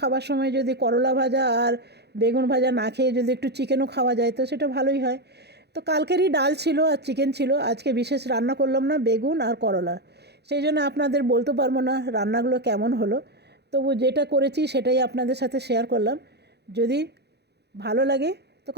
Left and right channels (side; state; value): left; late; 0.48 ms